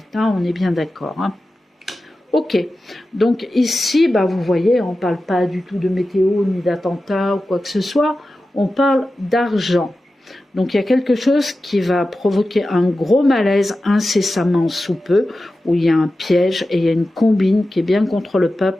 Hein, on est bien d'accord. Hein. Ok, donc ici, bah, vous voyez, on ne parle pas du tout de météo, ni d'attentat ou quoi que ce soit, on parle d'argent. Donc il y a quelque chose qui va provoquer un gros malaise incessamment sous peu, où il y a un piège et il y a une combine qui est bien contre le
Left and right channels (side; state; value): both; normal; correlation 0.93